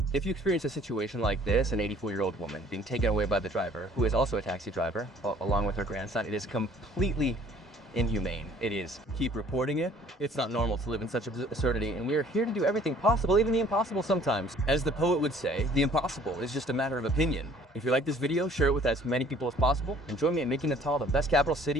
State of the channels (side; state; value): both; normal; correlation 0.55